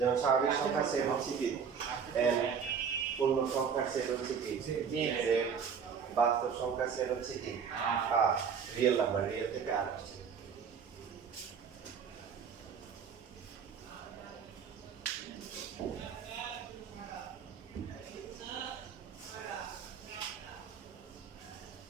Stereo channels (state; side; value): quieter; left; 6.7 dB